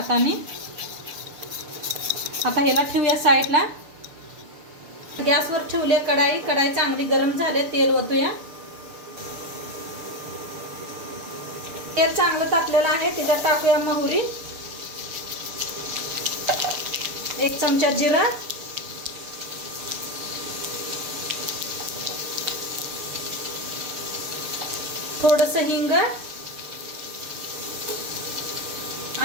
आता ह्याला ठेवूया साईडला। गॅसवर ठेवले कढाई। कढाई चांगली गरम झाले, तेल ओतूया। तेल चांगलं तापलेलं आहे, त्याच्यात टाकूया मोहरी, 1 चमचा जिरा, थोडंसं हिंग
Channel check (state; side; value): late; left; 6.7 ms